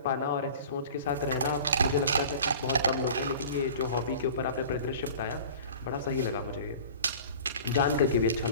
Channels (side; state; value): both; inverted; correlation -0.41